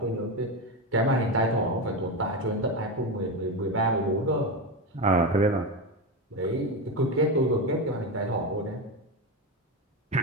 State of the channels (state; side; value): normal; both; correlation 0.15